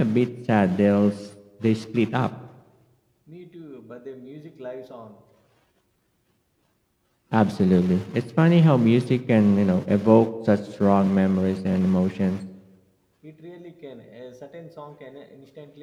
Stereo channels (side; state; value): both; identical; correlation 1.00